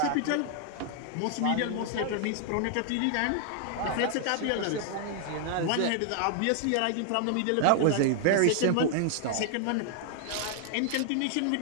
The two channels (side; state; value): both; different; correlation 0.00